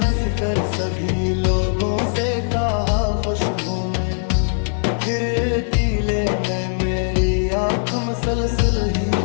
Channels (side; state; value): right; silent; digital silence